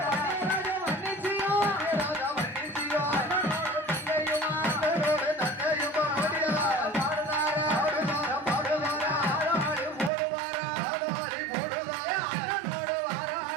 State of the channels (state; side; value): drops out; left; at 10.1 s